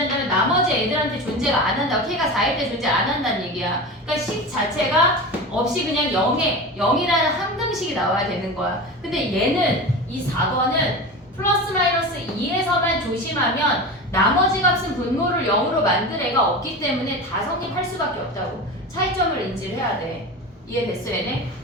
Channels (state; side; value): normal; both; correlation 0.28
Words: 나머지 애들한테 존재가 안 한다고. k가 4일 때 존재 안 한다는 얘기야. 그러니까 식 자체가 없이 그냥 0이라는 항등식이 나와야 되는 거야. 근데 얘는 이 4번은 플러스 마이너스 2에서만 조심하면 나머지 값은 분모를 0으로 만들 애가 없기 때문에 다 성립할 수밖에 없다고. 차이점을 인지를 해야 돼. 이해됐어 얘네?